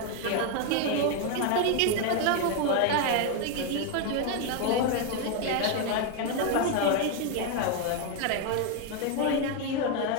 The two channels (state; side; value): different; both; correlation 0.01